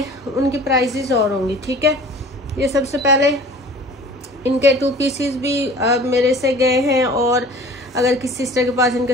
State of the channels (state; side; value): normal; both; correlation 0.45